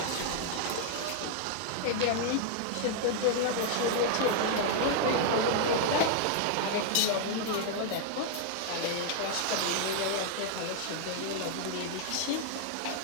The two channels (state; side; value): different; both; correlation 0.00